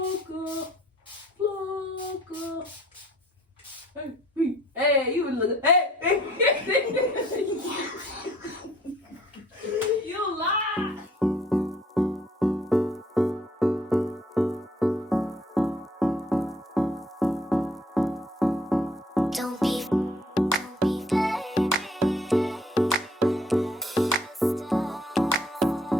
flocka. Hey, you look. Hey, you lie. Don't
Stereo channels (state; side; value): normal; both; correlation 0.62